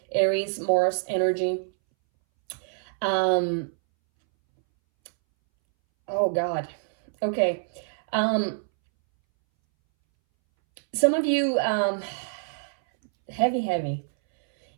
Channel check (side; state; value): left; silent; 61 dB below the other